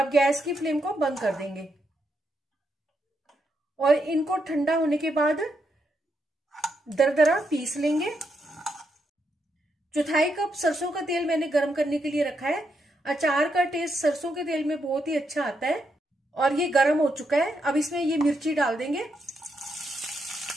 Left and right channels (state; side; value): normal; both; correlation 0.81